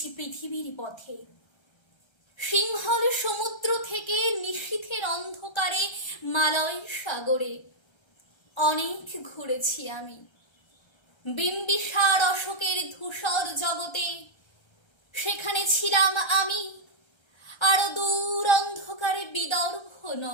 পৃথিবীর পথে, সিংহল সমুদ্র থেকে নিশীথের অন্ধকারে মালয় সাগরে। অনেক ঘুরেছি আমি বিম্বিসার অশোকের ধূসর জগতে, সেখানে ছিলাম আমি আরো দূর অন্ধকারে বিদর্ভ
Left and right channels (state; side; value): late; right; 1.3 ms